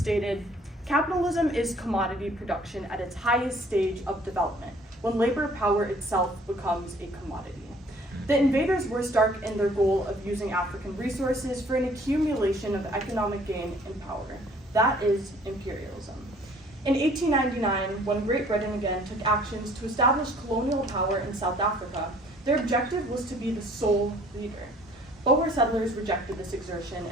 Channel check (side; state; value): both; normal; correlation 0.56